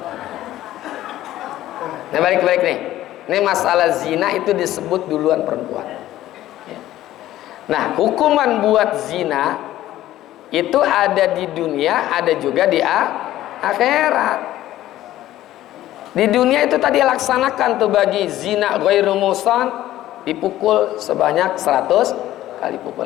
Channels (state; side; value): quieter; right; 14.2 dB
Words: Nah balik nih. Ini masalah zina itu disebut duluan perempuan. Nah, hukuman buat zina itu ada di dunia, ada juga di akhirat. Di dunia itu tadi laksanakan tuh bagi zina ghairu muhsan dipukul sebanyak 100 kali